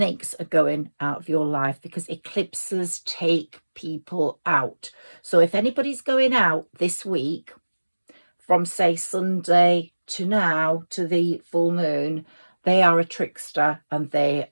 are going out of your life because eclipses take people out. So if anybody's going out this week, from say Sunday to now to the full moon, they are a trickster and they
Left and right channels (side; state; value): both; inverted; correlation -1.00